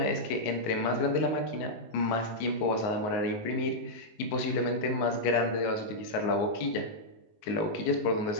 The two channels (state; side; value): late; right; 19 ms